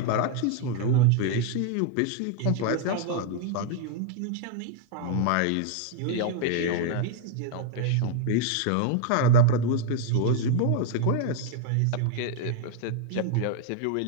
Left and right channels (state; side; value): different; both; correlation 0.00